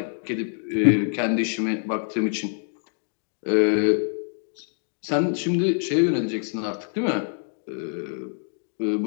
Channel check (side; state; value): right; silent; 58 dB below the other